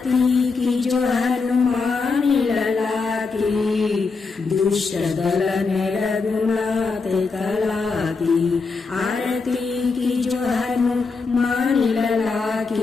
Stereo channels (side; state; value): right; quieter; 4.5 dB